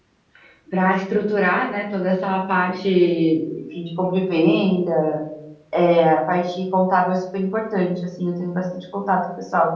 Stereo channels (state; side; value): identical; both; correlation 1.00